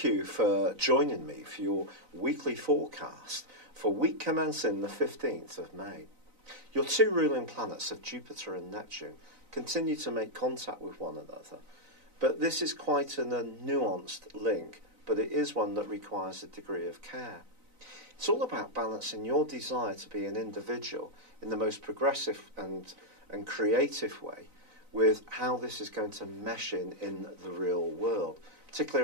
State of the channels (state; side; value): late; left; 4.0 ms